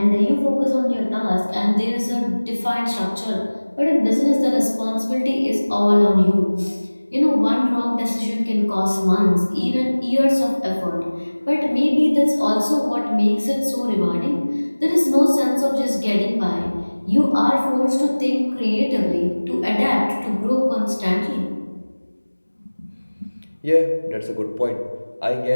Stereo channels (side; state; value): both; inverted; correlation -1.00